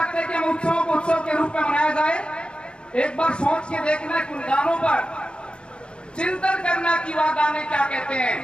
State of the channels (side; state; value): right; late; 0.055 ms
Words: कि हम उत्सवों को उत्सव के रूप में मनाया जाए? एक बार सोच के देखना कि उन गानों पर चिंतन करना कि वह गाने क्या कहते